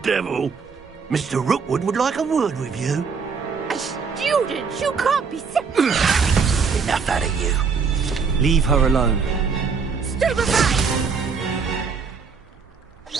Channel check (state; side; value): quieter; left; 5.5 dB